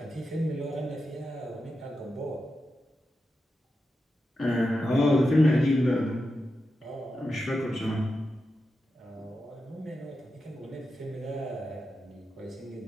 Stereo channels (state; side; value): normal; both; correlation 0.89